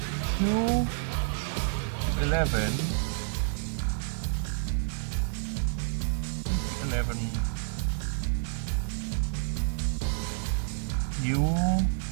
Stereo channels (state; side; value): silent; left; 58 dB below the other